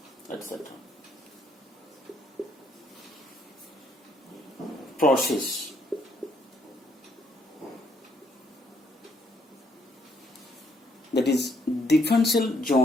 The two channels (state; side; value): normal; both; correlation 0.71